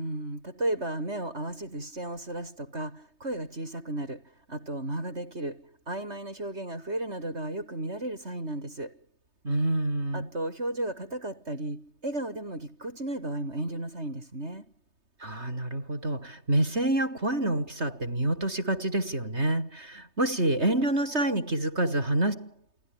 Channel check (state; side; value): late; left; 3.2 ms